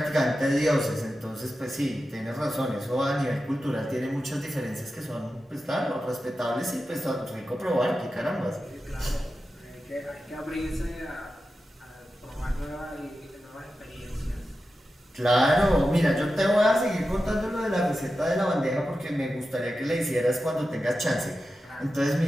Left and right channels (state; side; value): normal; both; correlation 0.92